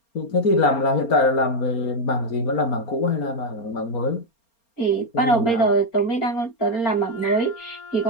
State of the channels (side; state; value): right; late; 4.3 ms